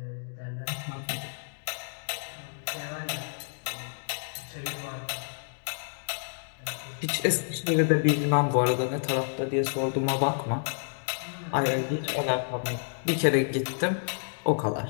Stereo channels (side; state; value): right; silent; digital silence